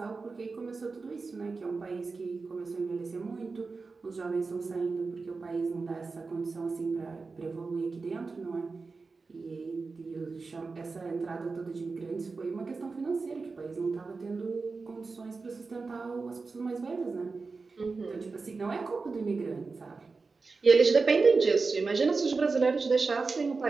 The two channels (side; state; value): left; quieter; 4.2 dB